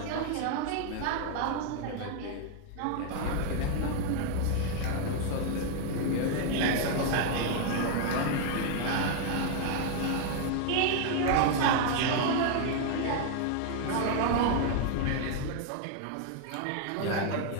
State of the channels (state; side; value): different; both; correlation 0.00